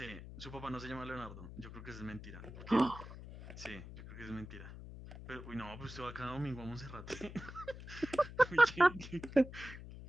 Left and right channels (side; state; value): left; noise; hum, 12 dB below the sound